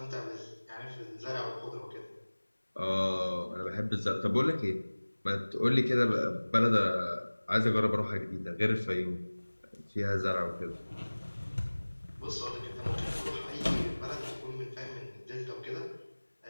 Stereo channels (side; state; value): both; inverted; correlation -1.00